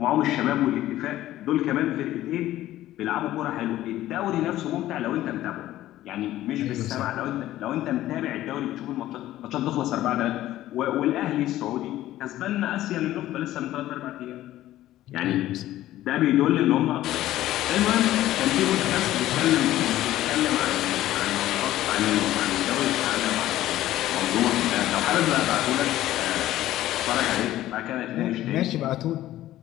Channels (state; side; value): quieter; right; 14.4 dB